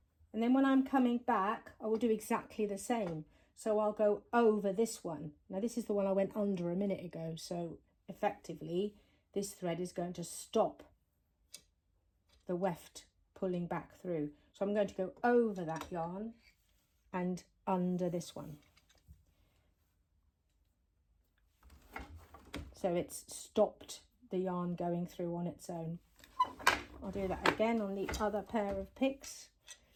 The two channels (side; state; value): both; identical; correlation 1.00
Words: And then when I'm coming back, I will do exactly the same. So I'll go over this one. Now this is the one I went under a minute ago. So effectively, this thread is going to stop the weft pulling back through. So I'm going to go over that yarn and under this one. So it's stopped the yarn going through on its own. I'll do that again on the other pair of picks.